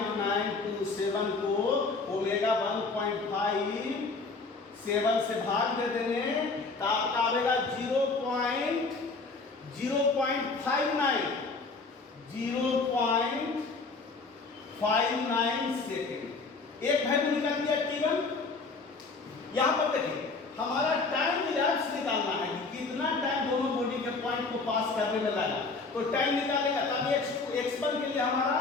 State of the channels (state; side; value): quieter; right; 4.0 dB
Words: को ओमेगा 1.57 से भाग दे देंगे तो आपका आएगा 0.59 सेकेंड। एक वैल्यू निकाल दिया T1। यहां पर देखिए हमारा टाइम इलैप्स निकालना है कि कितना टाइम दोनों बॉडी के पॉइंट को पास करने में लगा, तो टाइम निकालेगा तब x1 के लिए हमारा